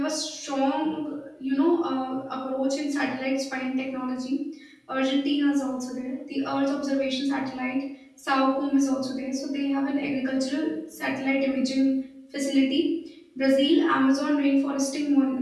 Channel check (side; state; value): both; identical; correlation 1.00